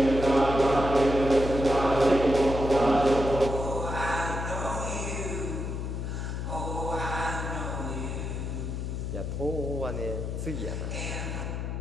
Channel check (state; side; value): noise; left; hum, 4 dB below the sound